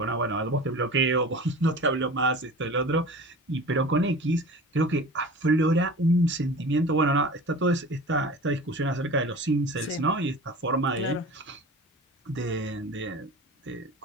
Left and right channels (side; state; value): both; normal; correlation 0.37